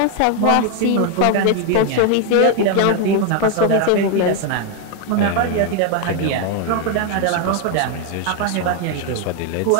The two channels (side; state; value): both; different; correlation 0.01